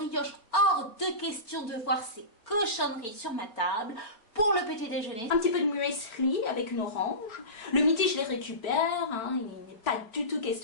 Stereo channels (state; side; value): late; right; 4.4 ms